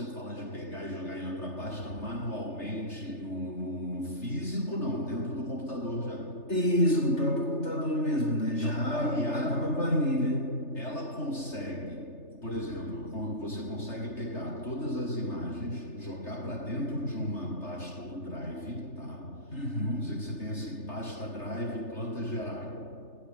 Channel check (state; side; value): late; right; 3.3 ms